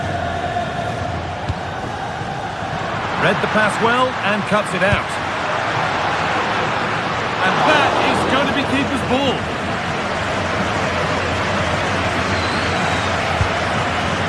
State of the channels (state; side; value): identical; both; correlation 1.00